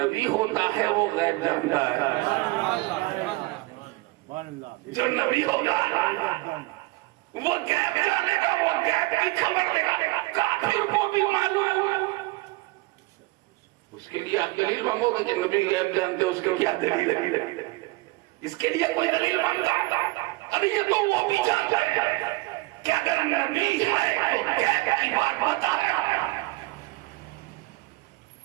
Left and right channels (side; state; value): left; quieter; 21.6 dB